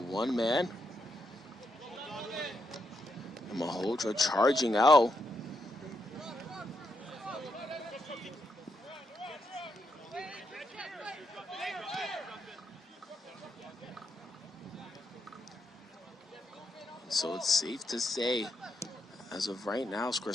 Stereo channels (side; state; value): both; normal; correlation 0.81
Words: one man. And Malhotra charging out. So it's safe to say, as of right now,